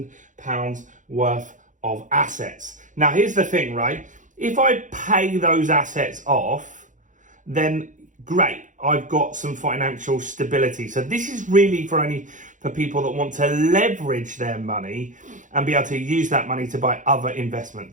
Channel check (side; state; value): left; late; 0.37 ms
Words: worth of assets. Now here's the thing, right? If I pay those assets off, then great, I've got some financial stability. So this is really for people that want to leverage their money and be able to use that money to buy other